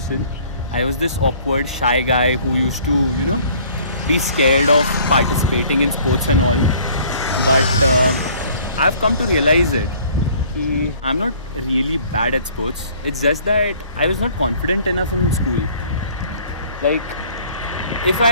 I was this awkward, shy guy who used to, you know, be scared of participating in sports and all. But I've come to realize it. I'm not really bad at sports. It's just that I was not confident enough in school. Like, if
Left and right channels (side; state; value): both; inverted; correlation -0.55